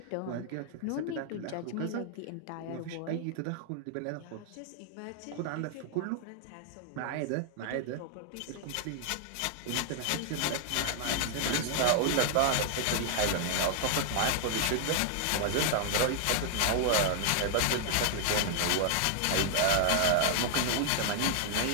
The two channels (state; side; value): different; both; correlation 0.00